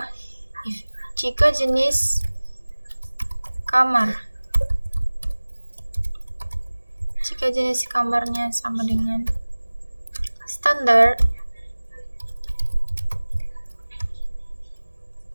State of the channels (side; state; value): both; inverted; correlation -1.00